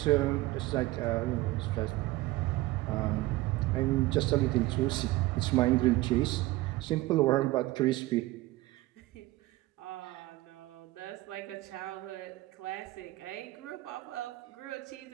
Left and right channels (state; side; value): quieter; left; 18.7 dB